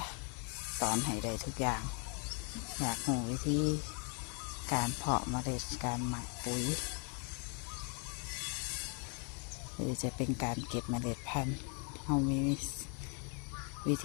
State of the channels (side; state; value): right; quieter; 37.5 dB